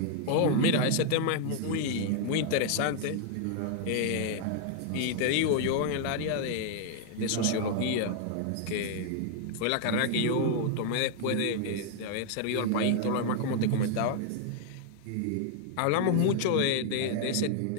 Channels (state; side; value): different; both; correlation 0.00